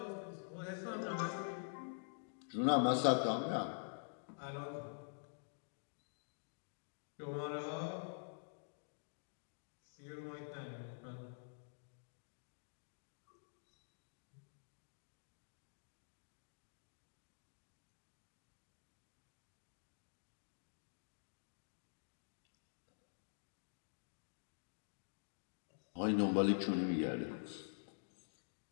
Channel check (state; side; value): silent; right; digital silence